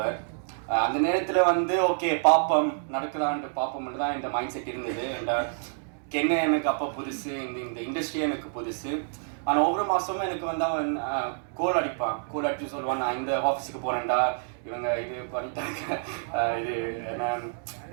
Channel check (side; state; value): left; silent; digital silence